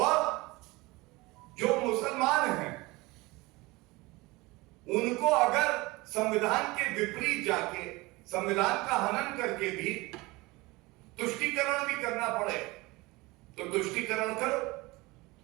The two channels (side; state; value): left; quieter; 22.5 dB